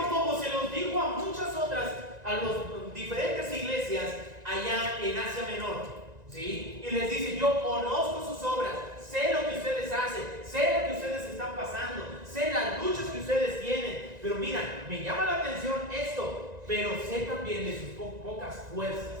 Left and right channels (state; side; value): late; left; 1.9 ms